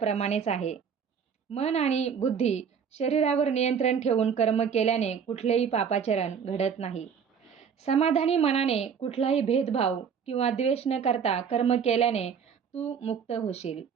आहे. मन आणि बुद्धी शरीरावर नियंत्रण ठेवून कर्म केल्याने कुठलेही पापाचरण घडत नाही. समाधानी मनाने कुठलाही भेदभाव किंवा द्वेष न करता कर्म केल्याने तू मुक्त होशील.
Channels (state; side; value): quieter; left; 7.0 dB